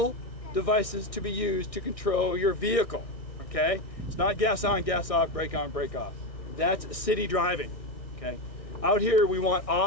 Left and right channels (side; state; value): right; late; 1.6 ms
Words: devices to be used to control your vehicle, okay? It's not gas on, gas off, brake on, brake off. That's city driving, okay? Out here, we want